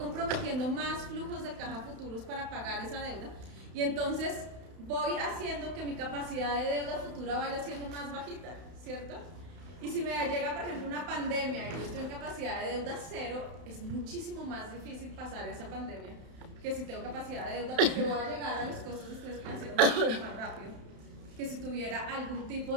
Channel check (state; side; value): late; left; 32 ms